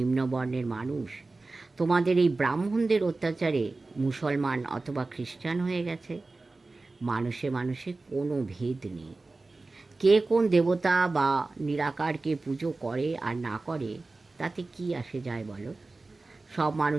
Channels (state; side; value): quieter; left; 3.4 dB